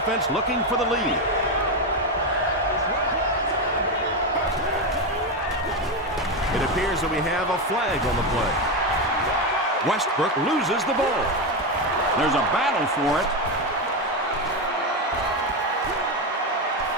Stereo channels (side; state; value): both; normal; correlation 0.11